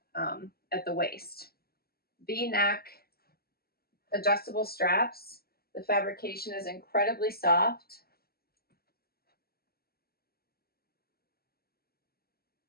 at the waist. V-neck, adjustable straps. The fabrication is incredibly soft.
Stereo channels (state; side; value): late; right; 0.45 ms